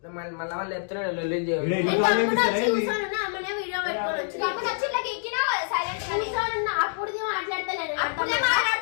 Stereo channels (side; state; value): right; silent; digital silence